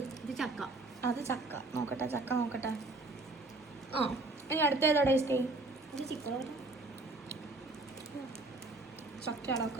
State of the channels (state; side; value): quieter; left; 3.1 dB